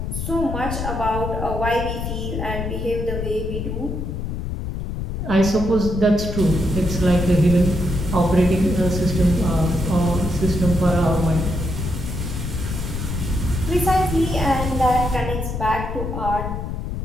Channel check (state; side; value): noise; left; rumble, 4 dB below the sound